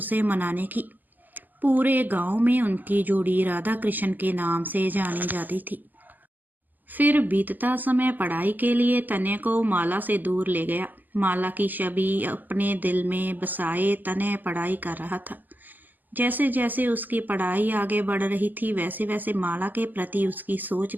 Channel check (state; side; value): late; left; 0.085 ms